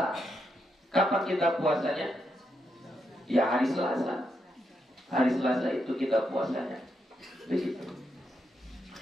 kapan kita puasanya? Ya hari Selasa. Hari Selasa itu kita puasanya. Begitu.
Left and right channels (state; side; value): normal; both; correlation 0.82